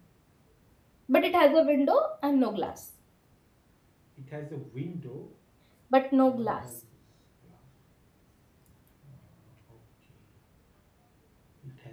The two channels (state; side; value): identical; both; correlation 1.00